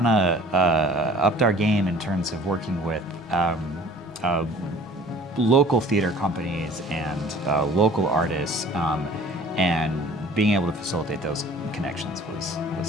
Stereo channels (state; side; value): normal; both; correlation 0.49